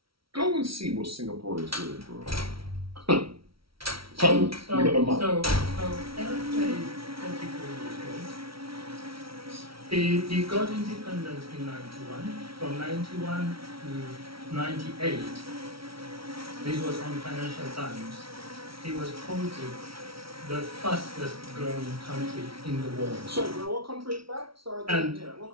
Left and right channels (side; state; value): left; late; 0.75 ms